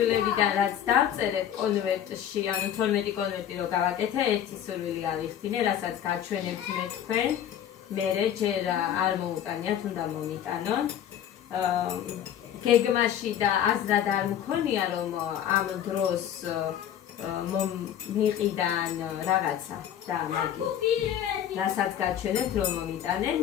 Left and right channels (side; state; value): right; quieter; 10.1 dB